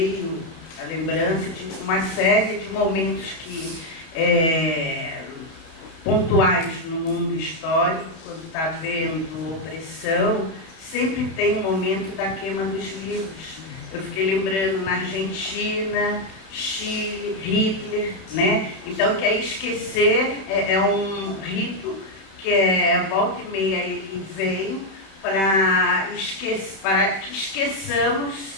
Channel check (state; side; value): late; right; 31 ms